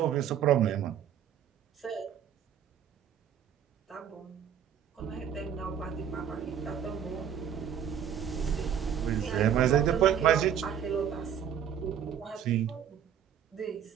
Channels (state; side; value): quieter; left; 8.9 dB